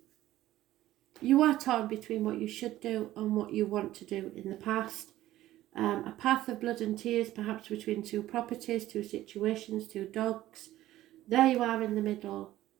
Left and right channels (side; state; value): left; quieter; 14.8 dB